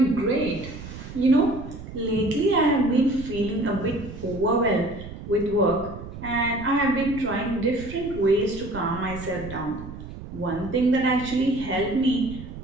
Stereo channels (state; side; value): noise; right; rumble, 12 dB below the sound